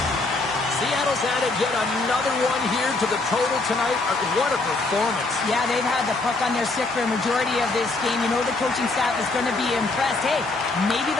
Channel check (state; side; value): quieter; right; 3.3 dB